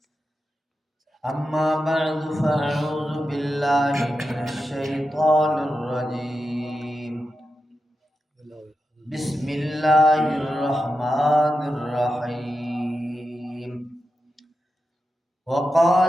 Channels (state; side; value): normal; both; correlation 0.90